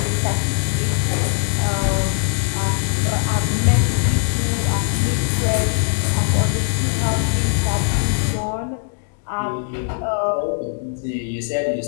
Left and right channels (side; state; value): right; silent; digital silence